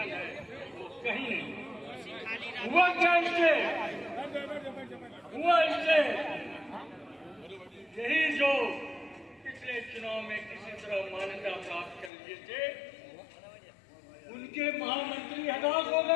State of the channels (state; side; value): drops out; right; at 12.1 s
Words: है, वो कहीं नहीं। हुआ क्या इससे? हुआ इससे यही जो पिछले चुनाव में किसी तरह मान्यता प्राप्त कर लिए थे, उनके महामंत्री हताश हो